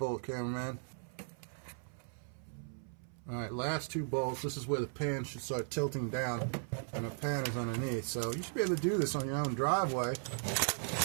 cameraman. Alright, last 2 bolts. This is where the pan should start tilting down, and the pan is underneath. So you should be able to do this on your own driveway.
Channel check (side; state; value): left; silent; 53 dB below the other